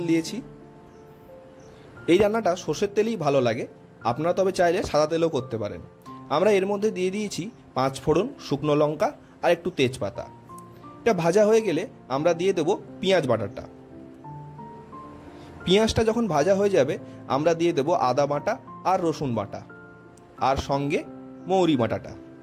দিয়েছি। এই রান্নাটা সর্ষের তেলেই ভালো লাগে, আপনারা তবে চাইলে সাদা তেলও করতে পারেন। আমরা এর মধ্যে দিয়ে দিয়েছি 5 ফোড়ন, শুকনো লঙ্কা আর একটু তেজপাতা। এটা ভাজা হয়ে গেলে আমরা দিয়ে দেব পেঁয়াজ বাটাটা। পেঁয়াজটা যখন ভাজা হয়ে যাবে আমরা দিয়ে দেব আদা বাটা আর রসুন বাটা আর সঙ্গে মৌরি বাটাটা।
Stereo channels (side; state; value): both; identical; correlation 1.00